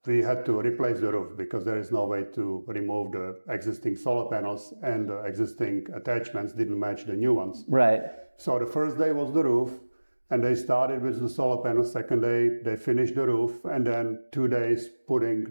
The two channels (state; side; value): inverted; both; correlation -1.00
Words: We had to replace the roof because there is no way to remove the existing solar panels, and the existing attachments didn't match the new ones. Right. So the first day was the roof, and they started with the solar panels. Second day, they finished the roof, and then 2 days putting